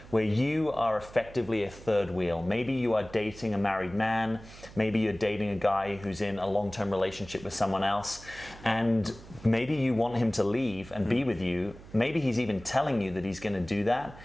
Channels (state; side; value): noise; right; hum, 18 dB below the sound